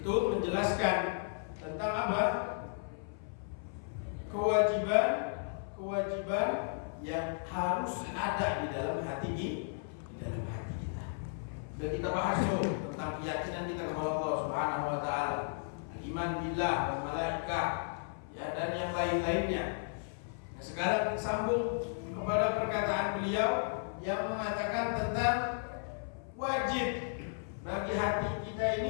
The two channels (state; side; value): silent; right; 55 dB below the other